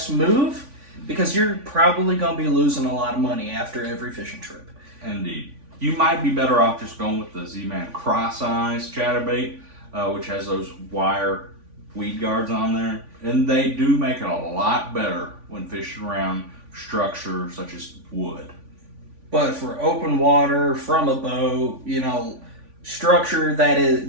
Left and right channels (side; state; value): left; late; 3.5 ms